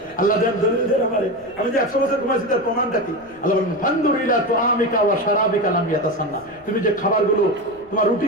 আল্লাহ দেন দলিল দেন আমারে, আমি যে 100 বছর ঘুমাইছি তার প্রমাণটা কি? আল্লাহ বলেন, ফানদুর ইলা তুআমিকা ওয়া শারাবিকা লাম ইয়াতাসান্না। তুমি যে খাবারগুলো, তোমার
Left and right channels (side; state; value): left; noise; rumble, 28 dB below the sound